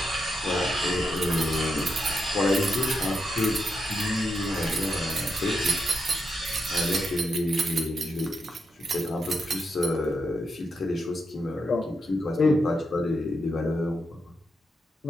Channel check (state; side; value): normal; both; correlation 0.84